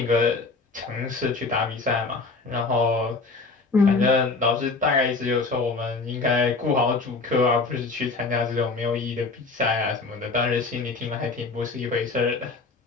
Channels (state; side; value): quieter; right; 3.9 dB